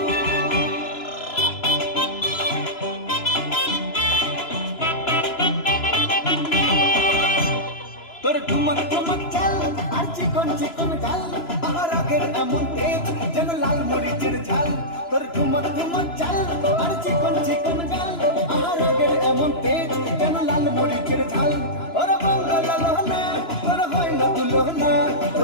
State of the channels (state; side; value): late; right; 3.0 ms